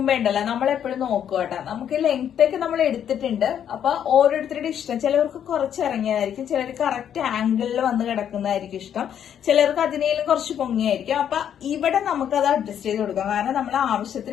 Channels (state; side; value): quieter; right; 9.3 dB